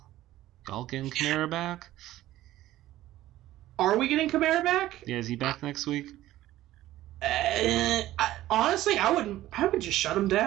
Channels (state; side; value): quieter; left; 14.9 dB